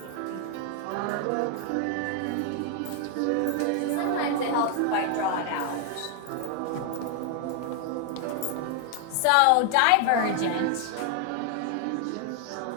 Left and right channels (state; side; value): different; both; correlation 0.00